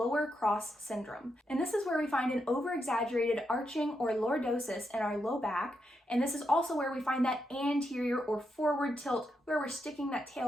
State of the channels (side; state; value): both; normal; correlation 0.83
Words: cross syndrome. And this is where we find an over-exaggerated arching or lordosis in our low back. And this is also where we find that anterior or forward tilt where we're sticking that